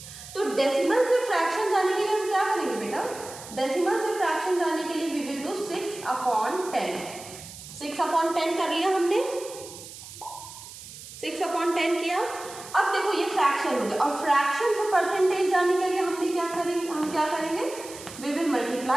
तो डेसिमल से फ्रैक्शन जाने के लिए हम क्या करेंगे बेटा? डेसिमल से फ्रैक्शन जाने के लिए वी विल डू 6/10। 6/10 कर लिया हमने, 6/10 किया। अब देखो ये फ्रैक्शन हो गया, और फ्रैक्शन से परसेंटेज जाने के लिए हमने क्या करेंगे? हम क्या करेंगे? We will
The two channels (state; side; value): noise; right; hiss, 15 dB below the sound